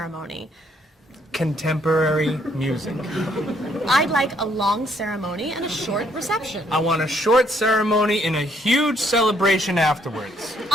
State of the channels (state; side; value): normal; both; correlation 0.69